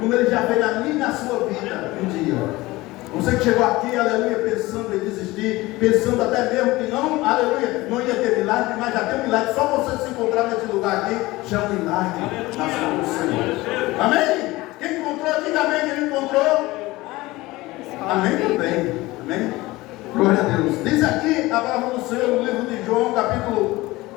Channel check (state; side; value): quieter; right; 19.8 dB